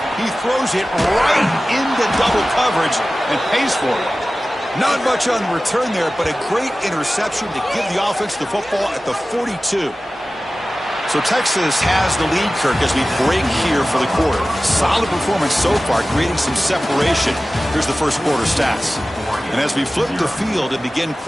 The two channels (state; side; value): normal; both; correlation 0.96